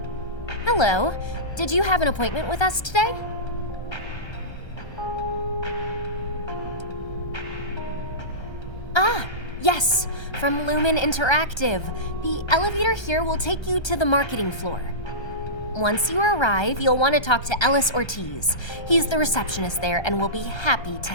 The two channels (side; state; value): right; late; 1.3 ms